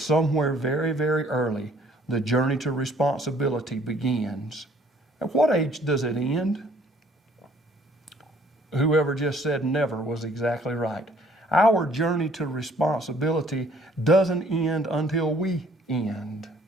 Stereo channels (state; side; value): normal; both; correlation 0.60